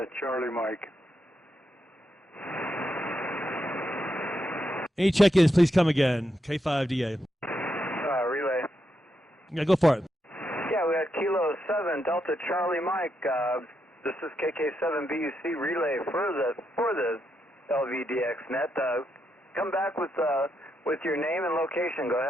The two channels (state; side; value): normal; both; correlation 0.82